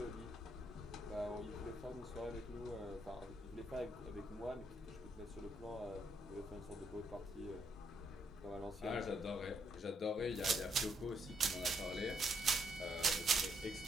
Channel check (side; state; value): both; normal; correlation 0.74